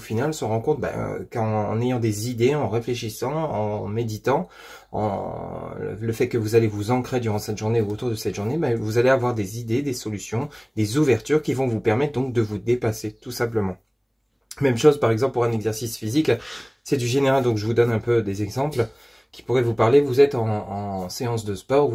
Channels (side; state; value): both; identical; correlation 1.00